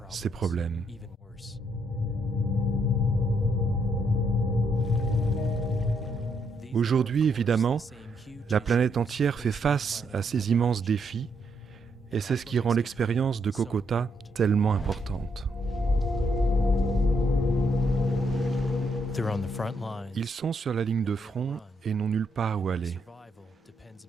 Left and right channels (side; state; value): both; normal; correlation 0.76